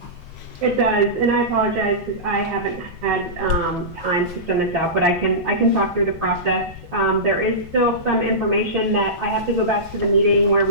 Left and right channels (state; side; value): noise; left; rumble, 19 dB below the sound